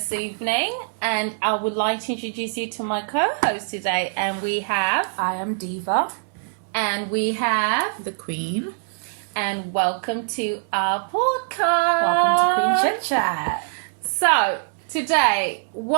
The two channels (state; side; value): silent; left; digital silence